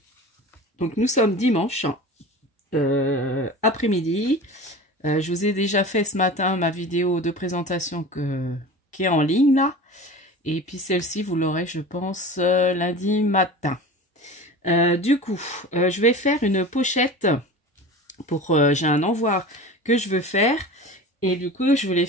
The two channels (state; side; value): normal; both; correlation 0.35